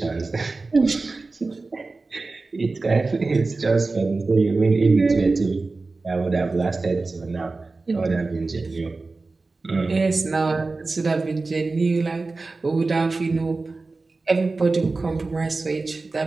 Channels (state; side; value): quieter; left; 3.7 dB